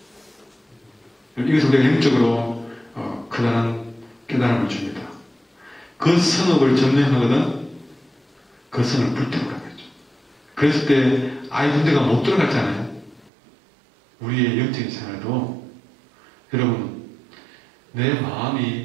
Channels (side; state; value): left; drops out; at 13.3 s